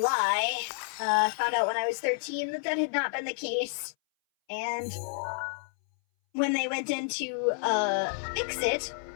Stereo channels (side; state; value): right; silent; 58 dB below the other